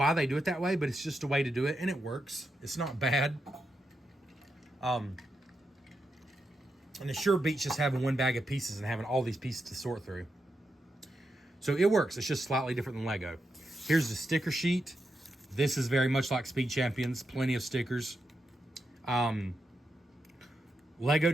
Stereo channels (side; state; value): both; normal; correlation 0.85